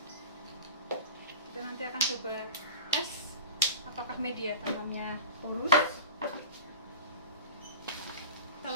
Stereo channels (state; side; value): inverted; both; correlation -0.36